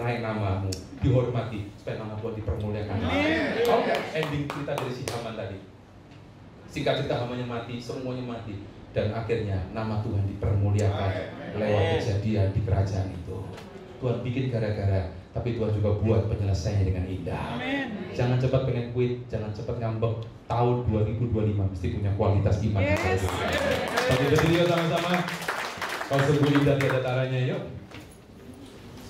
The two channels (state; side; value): identical; both; correlation 1.00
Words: namamu, dihormati, supaya nama Tuhan dipermuliakan. Oke, ending cerita dari si Haman tadi. Singkat cerita, Hamannya mati, semuanya mati, dan akhirnya nama Tuhan dipermuliakan lewat kejadian di kerajaan itu. Tuhan bikin gara-gara, tapi Tuhan juga buat penyelesaiannya dengan indah. Jangan cepat pengen quit, jangan cepat ngambek. Tahun 2025 mesti punya kualitas iman. Yes. Tapi berdiri sama-sama. Kalau sungguh indah tiada taranya, yuk.